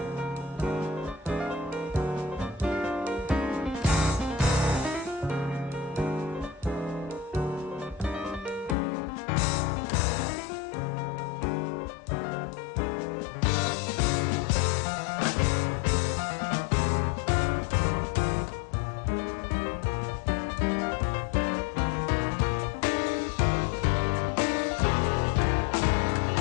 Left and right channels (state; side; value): drops out; right; at 8.8 s